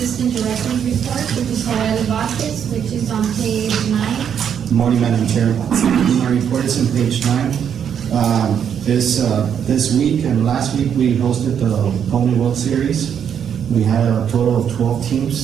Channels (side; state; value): left; quieter; 8.3 dB